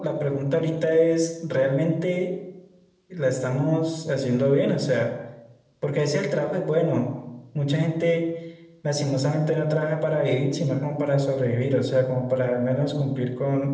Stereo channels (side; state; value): both; identical; correlation 1.00